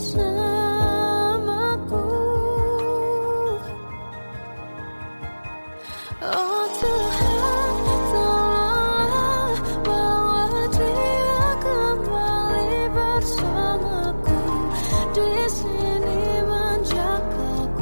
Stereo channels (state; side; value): inverted; both; correlation -1.00